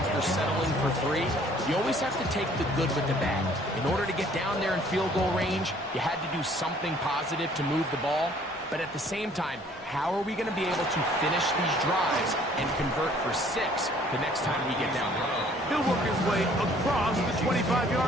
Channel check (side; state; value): both; normal; correlation 0.58